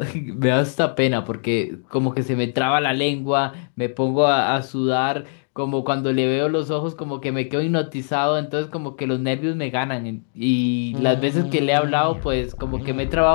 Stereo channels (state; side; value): silent; right; digital silence